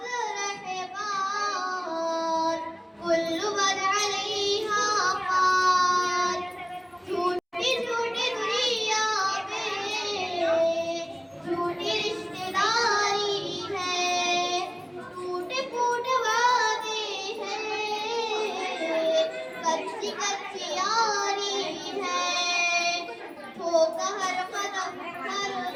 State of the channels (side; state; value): both; identical; correlation 1.00